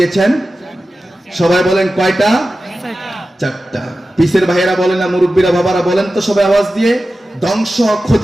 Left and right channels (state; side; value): normal; both; correlation 0.94